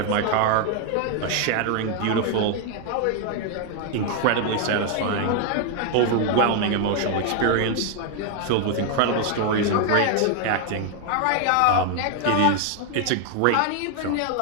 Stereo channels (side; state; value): both; different; correlation 0.01